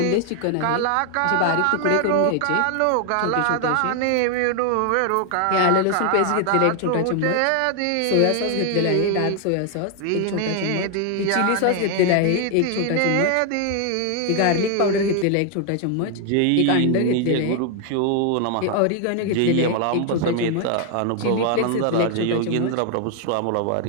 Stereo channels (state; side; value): different; both; correlation 0.00